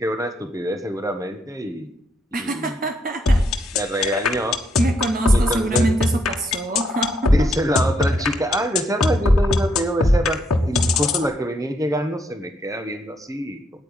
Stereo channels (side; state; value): both; normal; correlation 0.75